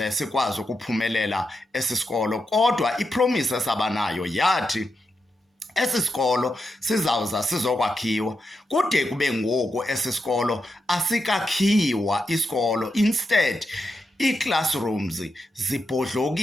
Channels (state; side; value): normal; both; correlation 0.86